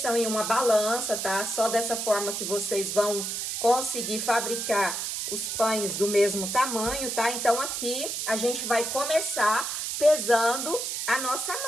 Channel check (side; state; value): right; noise; hiss, 3 dB below the sound